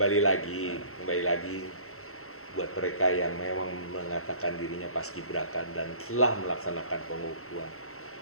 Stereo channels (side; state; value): right; late; 0.63 ms